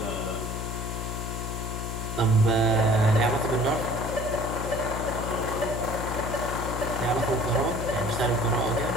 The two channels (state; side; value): noise; left; hum, 5 dB below the sound